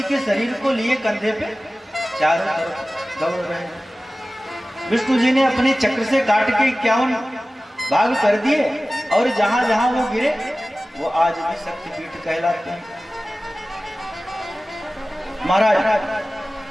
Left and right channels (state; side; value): normal; both; correlation 0.96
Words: के शरीर को लिए कंधे पे चारों तरफ दौड़ रहे हैं। विष्णु जी ने अपने चक्र से काट के 51 भाग कर दिए और जहां जहां वो गिरे वो आज भी शक्तिपीठ कहलाते हैं। महाराज